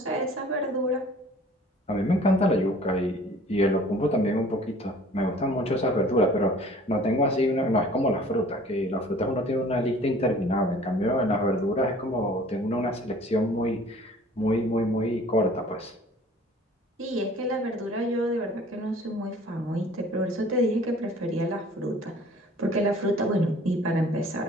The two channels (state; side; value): normal; both; correlation 0.50